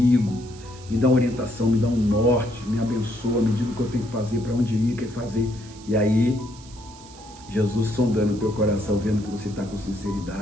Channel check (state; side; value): noise; right; hiss, 21 dB below the sound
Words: me dá uma orientação, me dá um norte, me abençoa, me diga o que eu tenho que fazer, para onde ir, o que fazer. E aí, Jesus sondando o teu coração, vendo que você está com